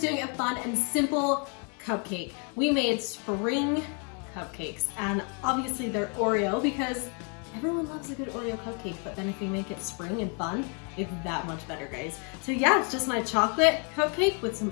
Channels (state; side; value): quieter; right; 37.9 dB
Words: doing a fun and simple cupcake. We made spring cupcakes, and obviously they're Oreo because everyone loves a good Oreo cupcake, but then if you make it spring and fun, it's that much better, guys. So yeah, it's just my chocolate cupcake with some